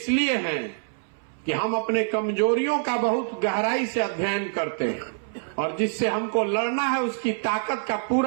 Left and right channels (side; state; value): left; silent; 61 dB below the other